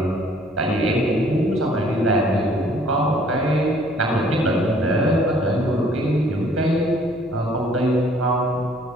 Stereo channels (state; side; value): noise; left; hum, 27 dB below the sound